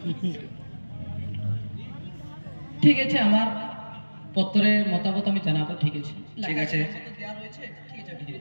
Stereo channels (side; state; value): both; inverted; correlation -1.00